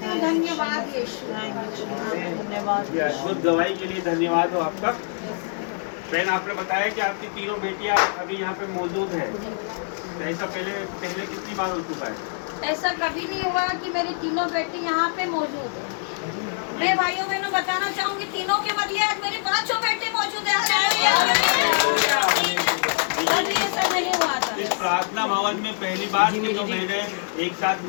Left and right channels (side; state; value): right; silent; 62 dB below the other